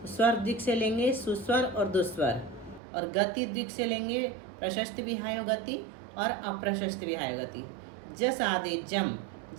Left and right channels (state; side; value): drops out; left; at 2.8 s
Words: स्वर द्विक से लेंगे सुस्वर और दुस्वर, और गति द्विक से लेंगे प्रशस्त विहायो गति और अप्रशस्त विहायो गति। जस आदेजम,